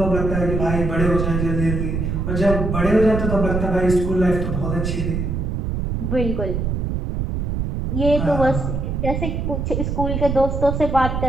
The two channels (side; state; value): right; noise; rumble, 1 dB below the sound